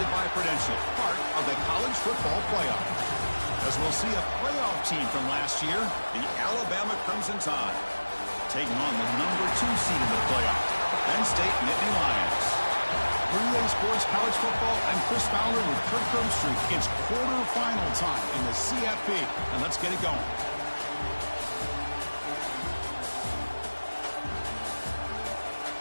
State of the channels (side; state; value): both; inverted; correlation -1.00